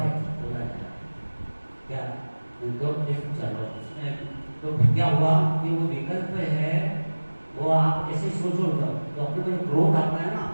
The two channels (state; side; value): inverted; both; correlation -1.00